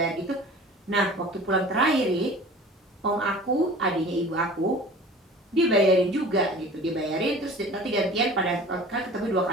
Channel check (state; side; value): normal; both; correlation 0.42